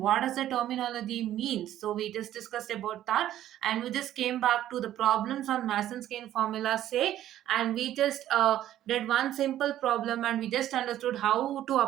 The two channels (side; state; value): left; quieter; 12.4 dB